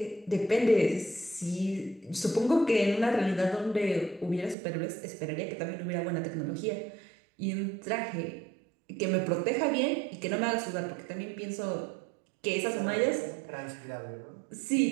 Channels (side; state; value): left; drops out; at 4.5 s